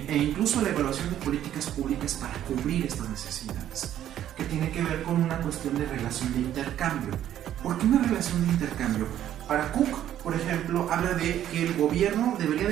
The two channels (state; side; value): quieter; left; 11.4 dB